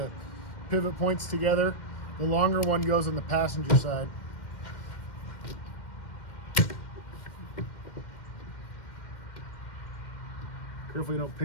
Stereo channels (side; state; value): right; late; 2.1 ms